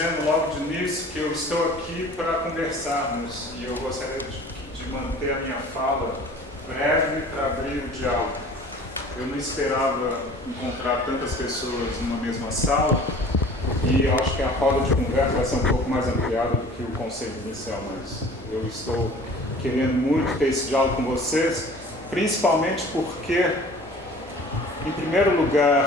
logo de início que eu estou aqui para conversarmos e eu gostaria de manter a minha fala breve para abrir o diálogo. Eu não esperava encontrar tantas pessoas numa mesma sala e acho que a roda de conversa vai ser um pouco mais ampliada do que o conceito inicial, mas eu estou querendo muito ter esse diálogo com vocês, principalmente porque, em primeiro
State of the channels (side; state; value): both; normal; correlation 0.46